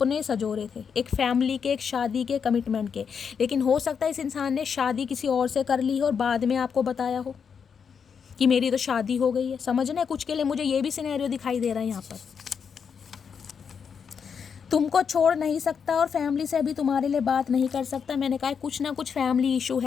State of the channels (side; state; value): right; quieter; 6.6 dB